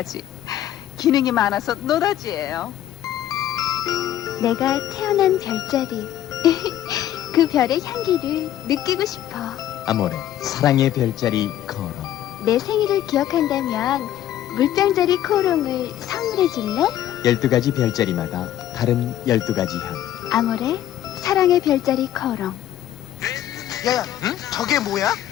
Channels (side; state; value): right; quieter; 12.0 dB